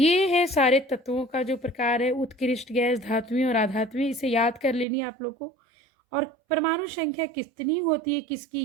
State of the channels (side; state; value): left; drops out; at 4.9 s